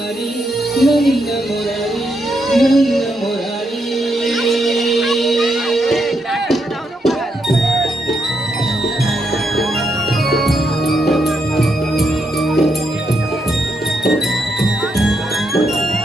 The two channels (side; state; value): both; normal; correlation 0.80